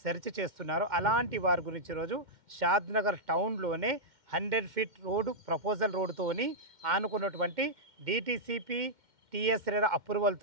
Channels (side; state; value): left; late; 2.1 ms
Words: సెర్చ్ చేస్తున్నారో అలాంటి వారి గురించి ఈరోజు షాద్నగర్ టౌన్లోనే 100 ఫీట్ రోడ్డు ప్రపోజల్ రోడ్డుతోని ఆనుకున్నటువంటి డిటిసిపి టిఎస్ రేరా